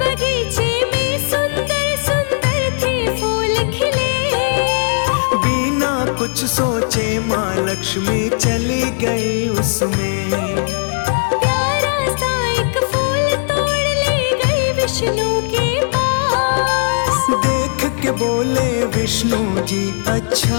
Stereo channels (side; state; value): right; silent; digital silence